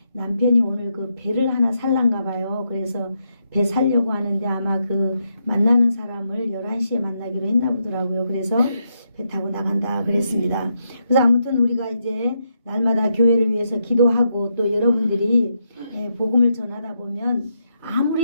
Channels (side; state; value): both; inverted; correlation -0.81